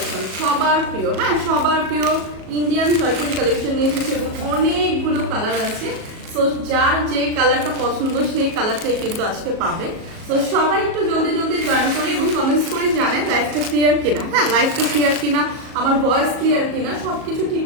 সবার প্রিয়। হ্যাঁ, সবার প্রিয় ইন্ডিয়ান জয়পুরি কালেকশন নিয়ে এসেছে এবং অনেকগুলো কালার আছে। সো যার যে কালারটা পছন্দ সেই কালারটাই কিন্তু আজকে পাবে। তো সবাই একটু জলদি জলদি জয়েন করি এবং কমেন্টস করে জানেন লাইভটা ক্লিয়ার কিনা। হ্যাঁ, লাইভটা ক্লিয়ার কিনা, আমার ভয়েস ক্লিয়ার কিনা, সবকিছু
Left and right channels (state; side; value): late; left; 37 ms